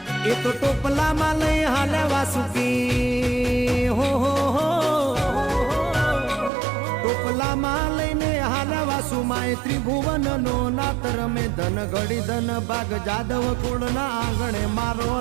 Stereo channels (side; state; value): left; drops out; at 6.5 s